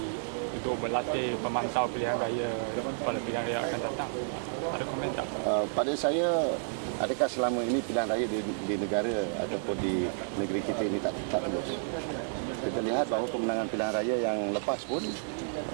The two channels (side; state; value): left; silent; 57 dB below the other